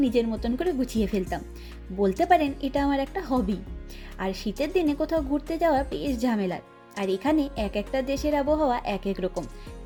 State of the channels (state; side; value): identical; both; correlation 1.00